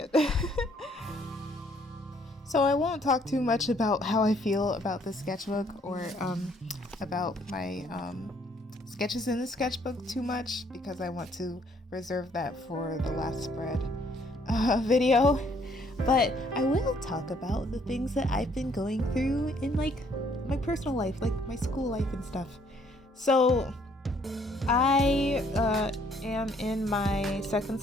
So I won't talk too much about how I feel about the sketchbook or about my sketches in the sketchbook too much, because I want to reserve that for the last spread video. But I will talk about the things that I've been going through in like my personal life, like my school life and stuff. So I am in my second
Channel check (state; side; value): normal; both; correlation 0.65